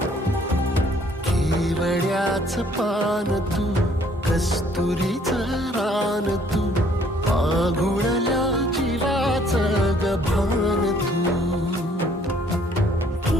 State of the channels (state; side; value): normal; both; correlation 0.61